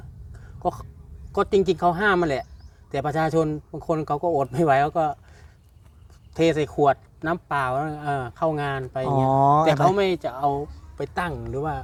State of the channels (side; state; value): both; identical; correlation 1.00